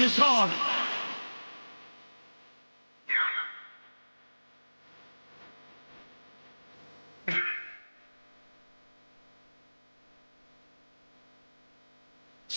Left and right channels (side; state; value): both; inverted; correlation -1.00